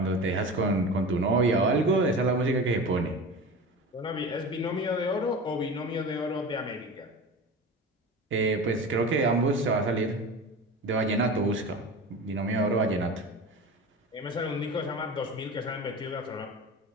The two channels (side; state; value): both; normal; correlation 0.31